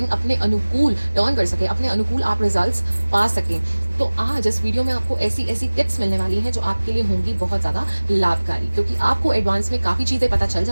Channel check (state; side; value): inverted; both; correlation -1.00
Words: अपने अनुकूल टर्न कर सके, अपने अनुकूल आप रिजल्ट्स पा सकें। तो आज इस वीडियो में आपको ऐसी ऐसी टिप्स मिलने वाली हैं जो आपके लिए होंगी बहुत ज़्यादा लाभकारी, क्योंकि आपको एडवांस में काफ़ी चीज़ें पता चल